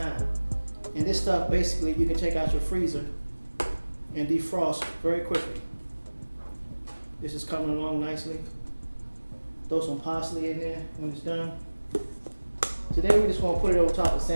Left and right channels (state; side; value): inverted; both; correlation -1.00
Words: And this stuff, basically, you can take out your freezer and defrost very quickly. This is coming along nicely. Throw some parsley in there when it's done. Today we're just gonna put it over top of